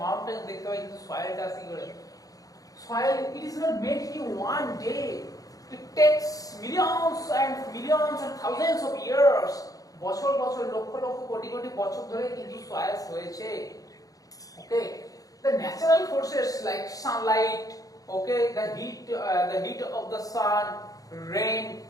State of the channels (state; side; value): late; right; 0.17 ms